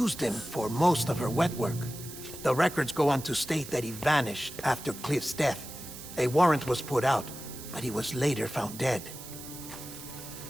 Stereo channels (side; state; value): right; noise; hiss, 13 dB below the sound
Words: him for most of her wet work. The records go on to state that he vanished after Cliff's death. A warrant was put out, but he was later found dead.